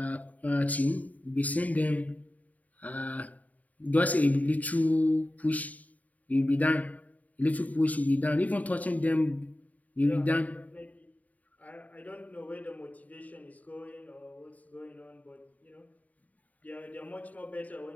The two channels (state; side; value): late; right; 0.073 ms